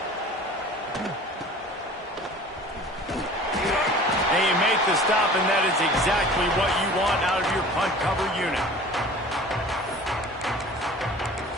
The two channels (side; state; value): both; normal; correlation 0.44